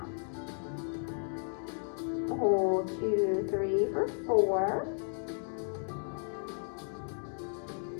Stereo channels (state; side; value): silent; right; 55 dB below the other